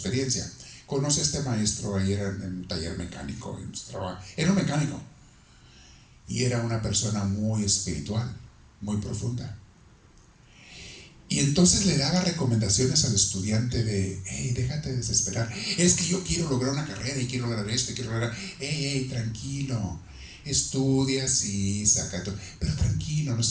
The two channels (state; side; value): identical; both; correlation 1.00